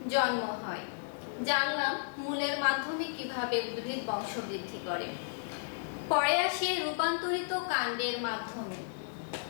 জন্ম হয়। জানলাম মূলের মাধ্যমে কিভাবে উদ্ভিদ বংশবৃদ্ধি করে। পরে আসে রূপান্তরিত কাণ্ডের মাধ্যমে।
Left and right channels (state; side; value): silent; right; digital silence